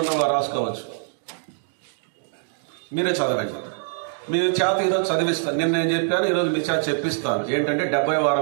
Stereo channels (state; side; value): silent; left; digital silence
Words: రాసుకోవచ్చు, మీరే చదవండి. మీ చేత ఈరోజు చదివిస్తాను. నిన్న నేను చెప్పాను, ఈరోజు మీ చేత చెప్పిస్తాను. ఏంటంటే 70